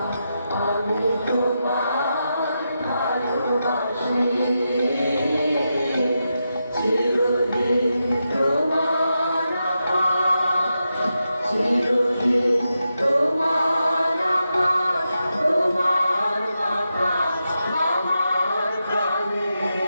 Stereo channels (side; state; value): both; inverted; correlation -0.87